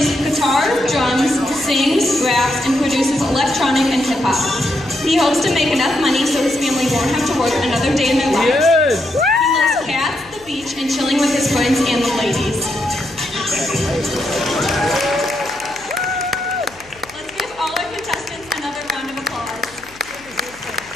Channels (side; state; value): left; noise; hum, 24 dB below the sound